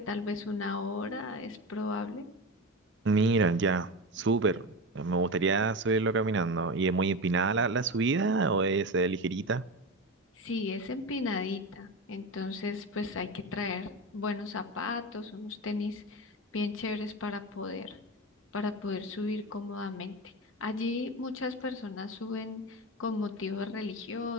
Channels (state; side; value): normal; both; correlation 0.22